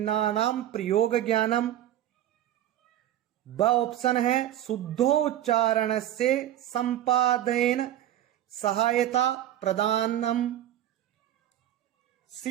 प्रयोग ज्ञानम। ब ऑप्शन है शुद्धोच्चारण से संपादन सहायता प्रदानम।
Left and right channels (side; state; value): left; quieter; 12.3 dB